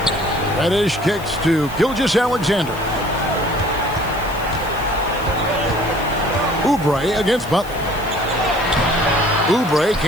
Reddish kicks to Gilgeous-Alexander. Oubre against Butler. Oubre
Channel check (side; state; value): left; noise; hiss, 18 dB below the sound